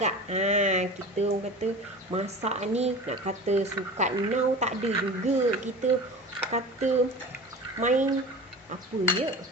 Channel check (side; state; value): both; normal; correlation 0.34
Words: Kita orang kata masak ni nak kata sukat now tak ada juga. Kita kata main apa ya,